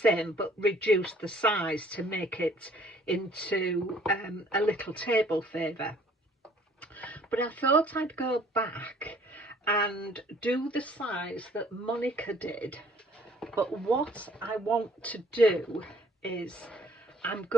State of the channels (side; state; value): both; normal; correlation 0.59